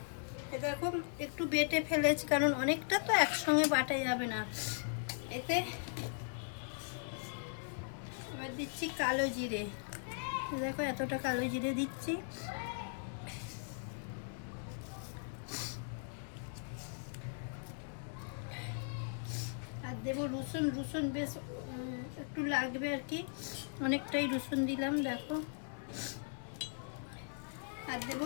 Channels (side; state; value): right; silent; digital silence